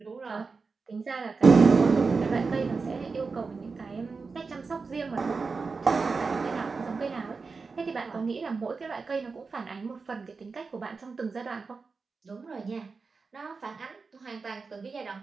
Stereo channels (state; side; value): quieter; left; 4.5 dB